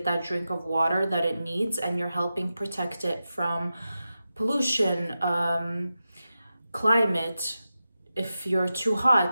that drink of water that it needs, and you're helping protect it from pollution, climate. If you're too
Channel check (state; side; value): inverted; both; correlation -0.92